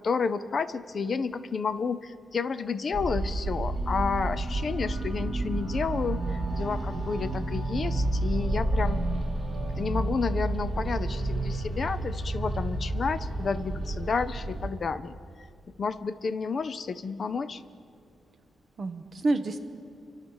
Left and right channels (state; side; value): normal; both; correlation 0.85